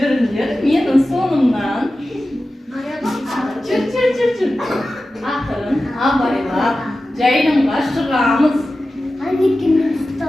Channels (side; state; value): both; normal; correlation 0.94